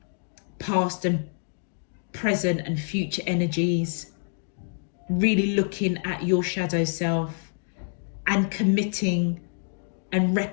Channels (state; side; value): silent; right; digital silence